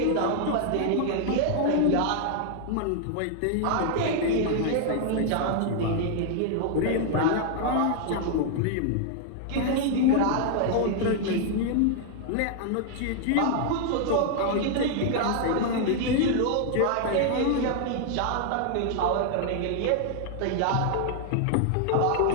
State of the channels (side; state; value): both; different; correlation 0.00